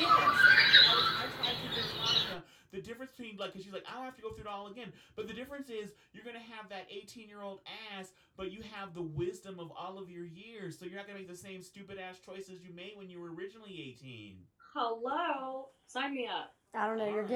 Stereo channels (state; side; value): identical; both; correlation 1.00